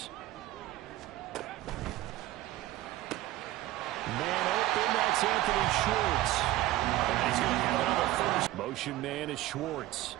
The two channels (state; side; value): quieter; left; 15.9 dB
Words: Man open, that's Anthony Schwartz. And he's going to have another 1st. Motion man is Schwartz.